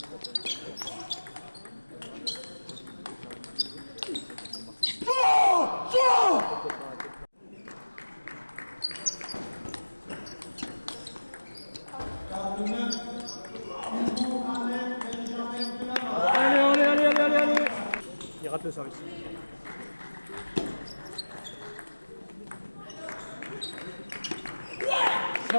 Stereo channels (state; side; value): inverted; both; correlation -1.00